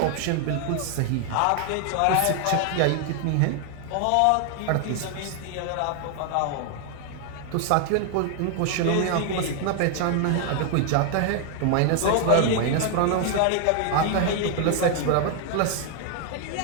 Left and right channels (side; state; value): both; different; correlation 0.00